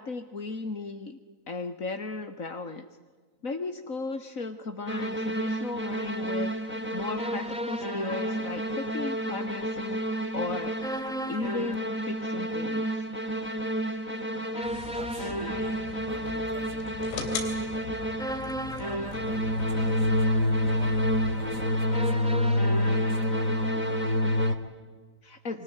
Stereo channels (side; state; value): right; late; 4.0 ms